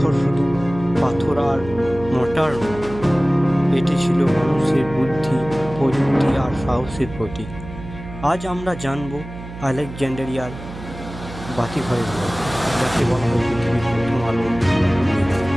শুধু পাথর আর মোটার নয়, এটি ছিল মানুষের বুদ্ধি, প্রযুক্তি আর সাহসের প্রতীক। আজ আমরা জানব আলেকজান্ডারিয়ার বাতিঘরের গল্প, যাকে বলা হয় পৃথিবীর প্রথম আলোর মিনার।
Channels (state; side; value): noise; right; hum, 13 dB below the sound